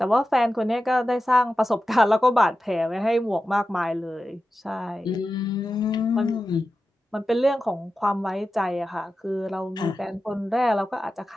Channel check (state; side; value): normal; both; correlation 0.93